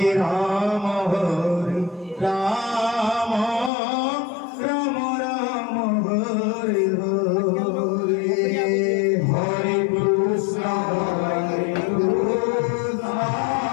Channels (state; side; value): drops out; right; at 3.7 s